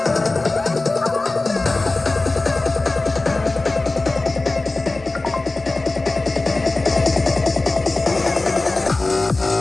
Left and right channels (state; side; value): quieter; right; 3.2 dB